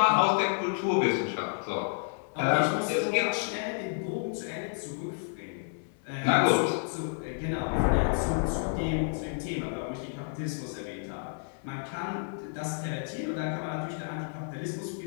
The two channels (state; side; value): silent; right; digital silence